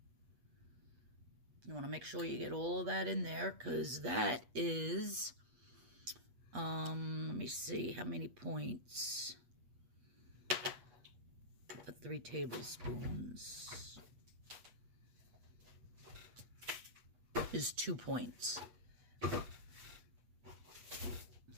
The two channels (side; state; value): left; late; 8.3 ms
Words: You want to make sure you get all of that in there, because that is let me see how many points. For 3 tablespoons is 2 points.